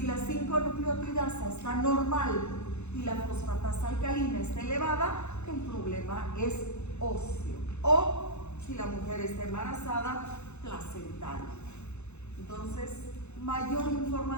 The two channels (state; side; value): late; right; 0.81 ms